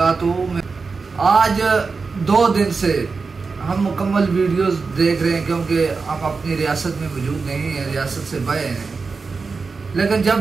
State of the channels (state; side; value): quieter; left; 4.6 dB